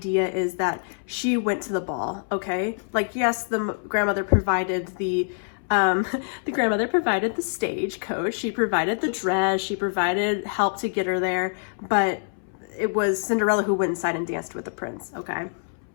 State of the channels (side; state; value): right; silent; 62 dB below the other